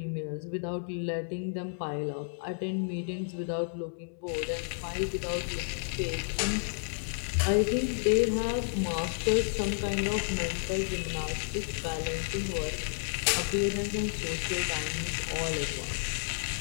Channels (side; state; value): right; silent; 57 dB below the other